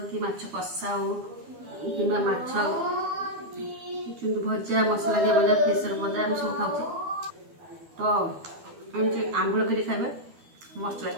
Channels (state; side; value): late; left; 12 ms